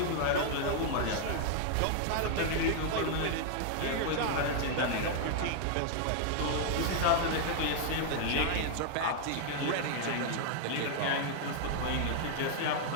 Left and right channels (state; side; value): different; both; correlation 0.00